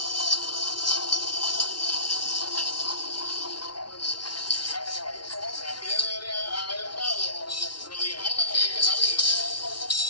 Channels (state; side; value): late; right; 0.71 ms